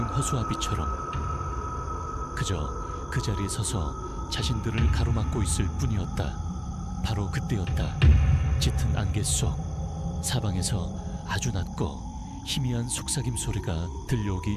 허수아비처럼 그저 그 자리에 서서 자신들을 가로막고 있을 뿐이었다. 바로 그때였다. 짙은 안개 속 사방에서 아주 낮고 희미한 속삭임 소리가 들려오기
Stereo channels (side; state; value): both; identical; correlation 1.00